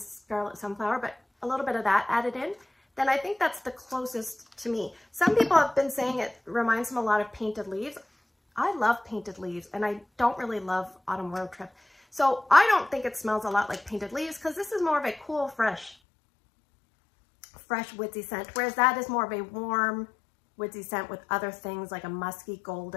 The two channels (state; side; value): drops out; right; at 16.0 s